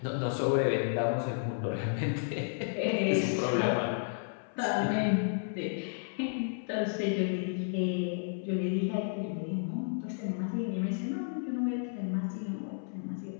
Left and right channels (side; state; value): right; silent; 56 dB below the other